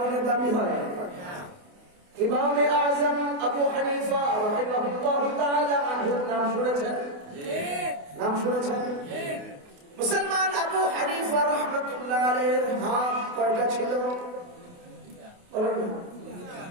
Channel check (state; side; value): late; left; 28 ms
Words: দাবী হয়? ইমামে আযম আবু হানিফা রাহিমাহুল্লাহু তাআলা আনহুর নাম শুনেছেন? নাম শুনেছেন? মুসলমান আবু হানিফা রাহমাতুল্লাহ আলাইহির হাত কয়টা ছিল? বলেন না,